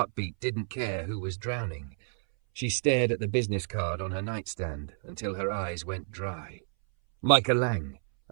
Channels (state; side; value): silent; left; 58 dB below the other